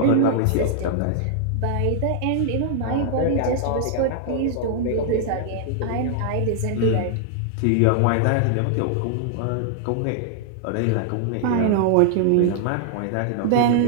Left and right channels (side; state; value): both; different; correlation -0.01